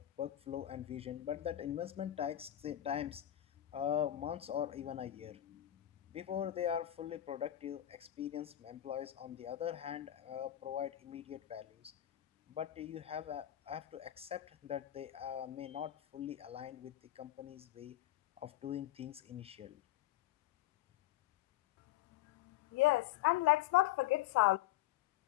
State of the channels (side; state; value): right; quieter; 13.5 dB